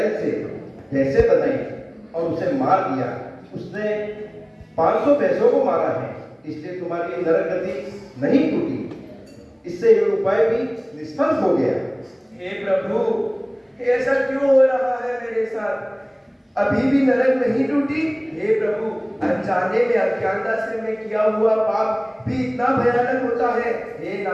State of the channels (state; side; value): identical; both; correlation 1.00